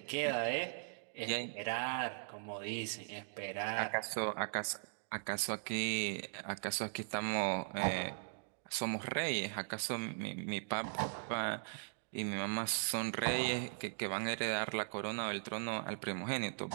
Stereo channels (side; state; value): left; silent; digital silence